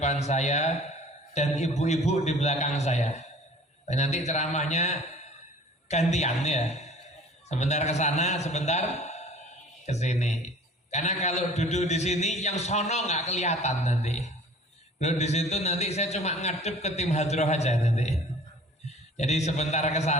saya dan ibu-ibu di belakang saya. Dan nanti ceramahnya gantian ya, sebentar ke sana, sebentar ke sini. Karena kalau duduk di sini yang sono nggak kelihatan nanti. Duduk di situ nanti saya cuma ngadep ke tim hadroh aja nanti. Jadi sebentar ke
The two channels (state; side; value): normal; both; correlation 0.47